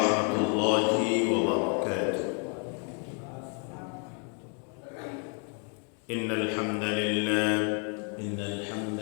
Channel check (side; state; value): right; quieter; 39.5 dB